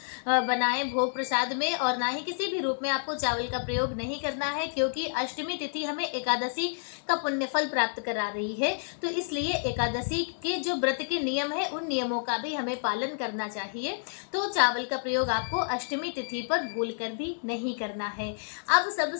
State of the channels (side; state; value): right; silent; digital silence